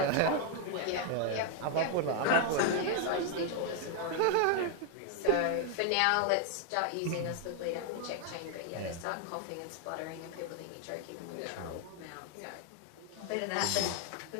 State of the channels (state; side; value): different; both; correlation 0.01